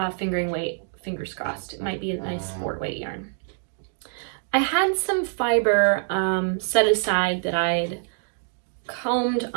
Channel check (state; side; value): silent; left; digital silence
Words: fingering weight, fingers crossed. It might be a nice sport weight yarn. I had some fiber set aside that I'd combed